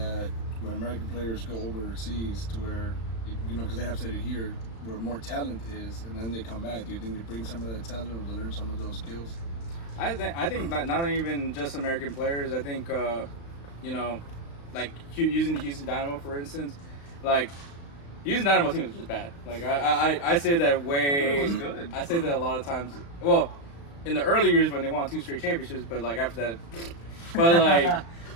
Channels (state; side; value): late; right; 35 ms